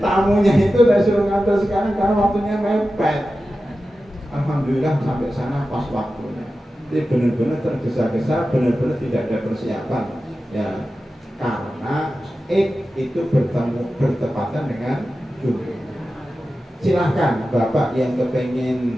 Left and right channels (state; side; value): normal; both; correlation 0.93